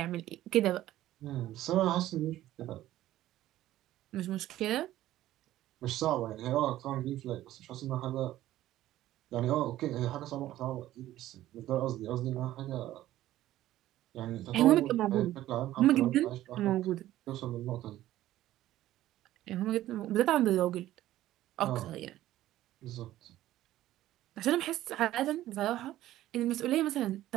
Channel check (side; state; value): left; quieter; 14.3 dB